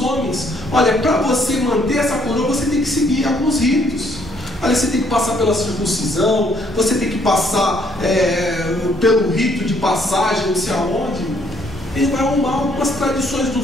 homens. Olha, para você manter essa coroa, você tem que seguir alguns ritos. Olha, você tem que passar pela circuncisão, você tem que passar pelo rito de passagem, não sei aonde. Ele vai arrumar algumas tradições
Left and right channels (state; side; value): normal; both; correlation 0.67